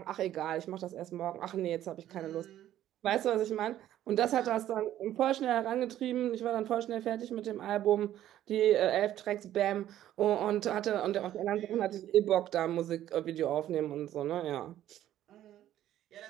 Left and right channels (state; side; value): quieter; left; 12.4 dB